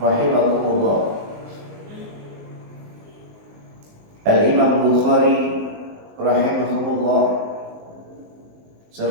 Al-Imam Bukhari rahimahumullah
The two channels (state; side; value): late; left; 19 ms